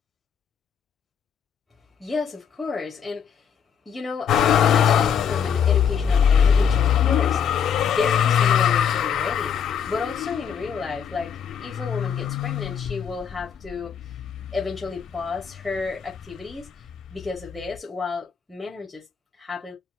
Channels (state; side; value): quieter; right; 7.5 dB